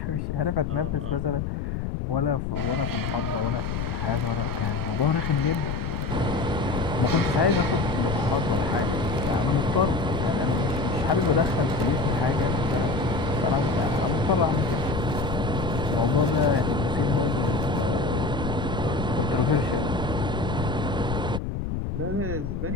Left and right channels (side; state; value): left; noise; rumble, 3 dB below the sound